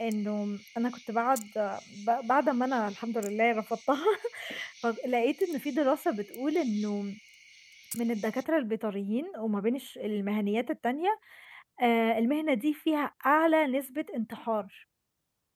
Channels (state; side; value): identical; both; correlation 1.00